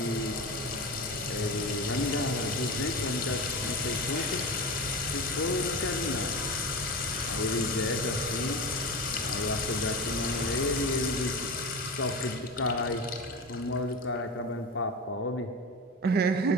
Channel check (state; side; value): normal; both; correlation 0.26